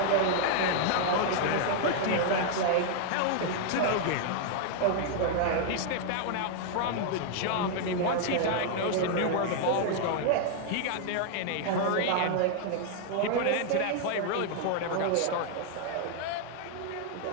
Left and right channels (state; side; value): different; both; correlation 0.00